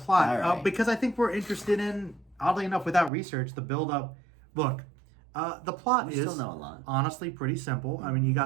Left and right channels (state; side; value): drops out; left; at 3.1 s